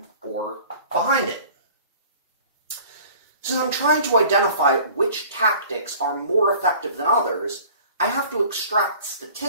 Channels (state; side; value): inverted; both; correlation -0.47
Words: or behind it. Since I'm trying to identify which tactics are more effective than others, I have to extract